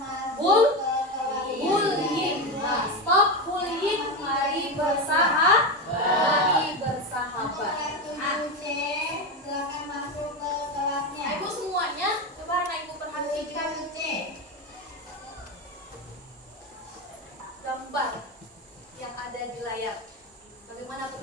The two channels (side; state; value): both; normal; correlation 0.16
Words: bullying. Nah, stop bullying, mari bersahabat. Nah, ibu semuanya, coba anak ibu perhatikan gambar yang ada di layar. Bagaimana